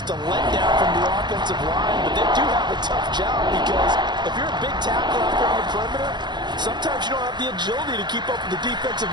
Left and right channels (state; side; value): late; left; 0.21 ms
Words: a letdown from the offensive line, but they do have a tough job because if you're a big tackle out there on the perimeter, sometimes you don't have the agility to keep up with the defensive